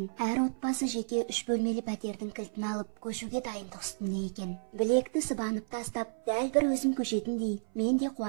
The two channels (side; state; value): left; silent; 56 dB below the other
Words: әр отбасы жеке 3 бөлмелі пәтердің кілтін алып, көшуге дайындық үстінде екен. Білекті сыбанып тастап, дәл бір өзім көшетіндей, мен де